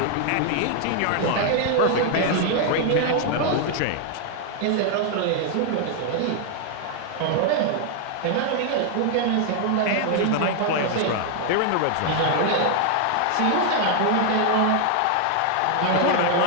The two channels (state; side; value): different; both; correlation 0.00